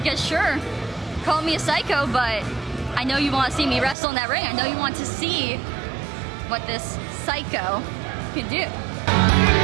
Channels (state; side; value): drops out; left; at 4.0 s